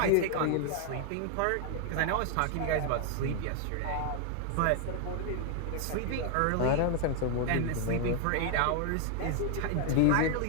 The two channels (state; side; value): different; both; correlation 0.00